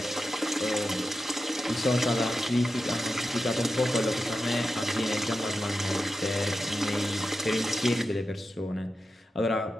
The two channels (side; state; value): both; normal; correlation 0.90